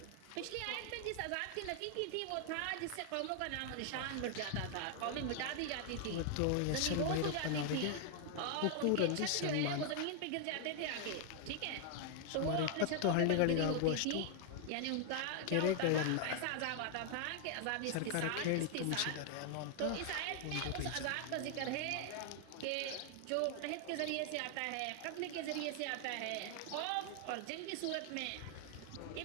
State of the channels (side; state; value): both; different; correlation 0.00